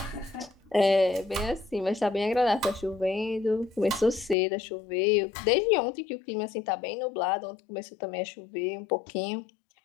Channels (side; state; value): right; drops out; at 4.4 s